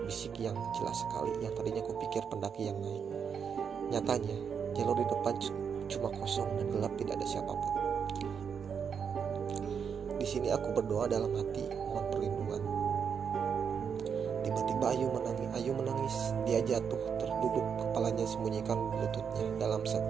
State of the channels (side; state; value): left; quieter; 6.9 dB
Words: yang jelas sekali, yang tadinya aku pikir pendaki yang naik. Nyatanya jalur di depan cuma kosong dan gelap, tidak ada siapapun. Di sini aku berdoa dalam hati mohon perlindungan. Tiba-tiba Ayu menangis. Dia jatuh terduduk, kepalanya sembunyikan lututnya. Dalam